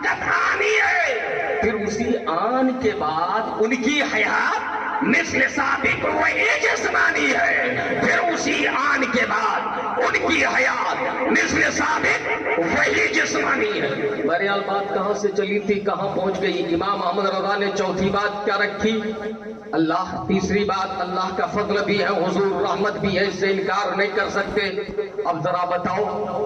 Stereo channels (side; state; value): both; identical; correlation 1.00